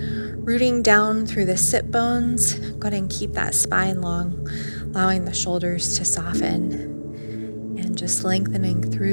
rooting down through the sit bones, go ahead and keep that spine long, allowing the shoulders to soften, and just lengthening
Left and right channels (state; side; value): inverted; both; correlation -1.00